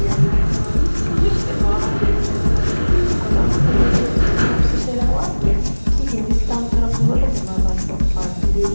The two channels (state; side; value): inverted; both; correlation -1.00